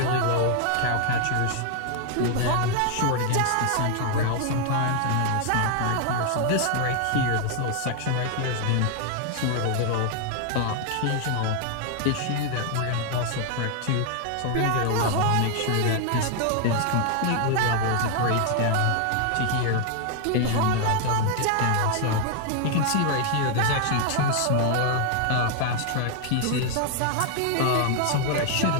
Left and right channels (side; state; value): both; different; correlation 0.00